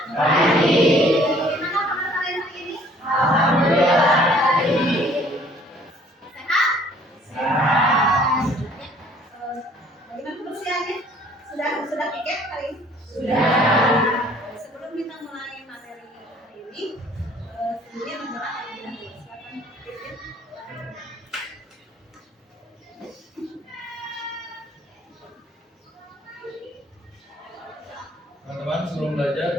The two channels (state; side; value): normal; both; correlation 0.57